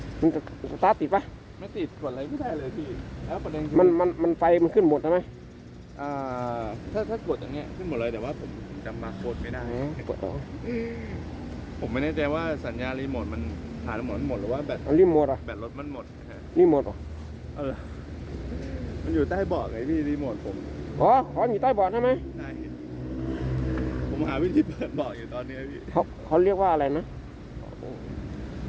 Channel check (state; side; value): identical; both; correlation 1.00